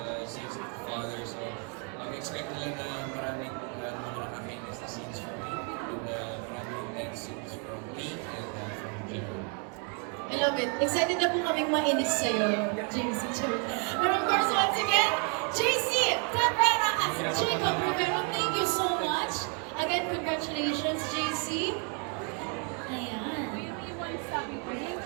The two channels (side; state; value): left; quieter; 38.6 dB